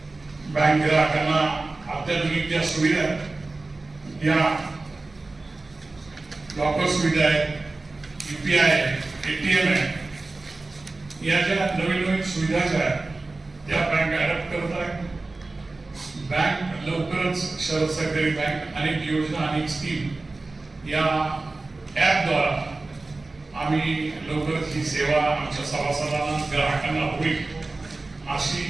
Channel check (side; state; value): left; quieter; 3.3 dB